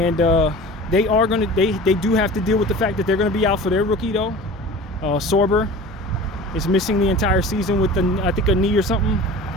they do have to deal with the fact that they're gonna be out for their rookie though. Sorber is missing the entire season with I think a knee or something.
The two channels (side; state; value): both; normal; correlation 0.38